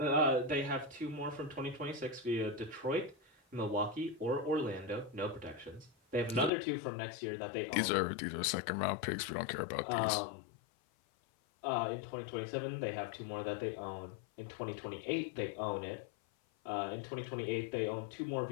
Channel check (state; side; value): drops out; right; at 6.5 s